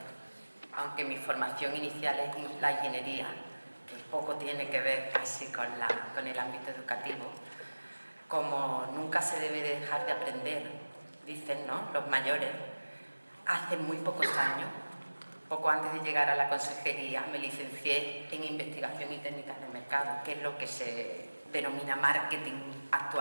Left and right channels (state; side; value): inverted; both; correlation -1.00